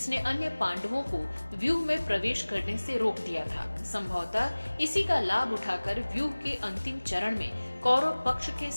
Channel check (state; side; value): inverted; both; correlation -1.00